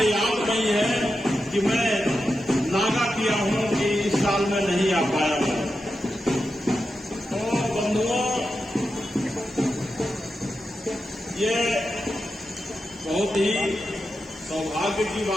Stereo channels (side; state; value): both; normal; correlation 0.89